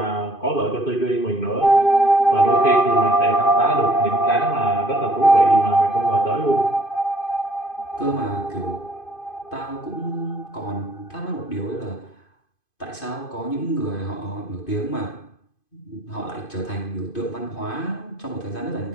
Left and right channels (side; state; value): right; late; 2.5 ms